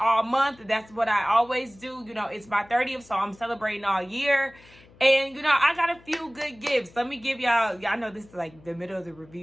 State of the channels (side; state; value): left; noise; hum, 26 dB below the sound